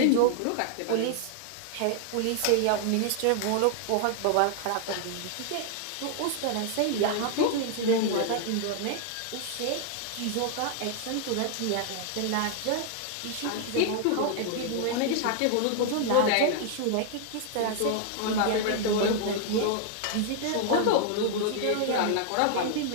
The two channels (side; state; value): both; different; correlation 0.00